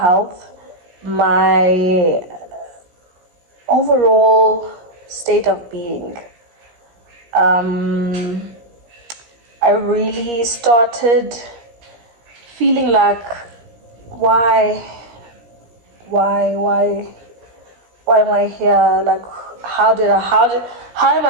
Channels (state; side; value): late; left; 17 ms